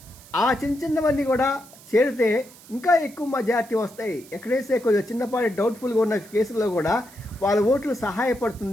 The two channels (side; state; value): right; noise; hiss, 22 dB below the sound